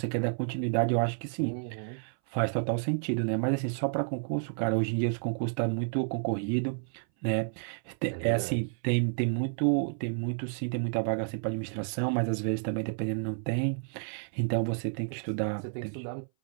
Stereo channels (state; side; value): silent; left; 57 dB below the other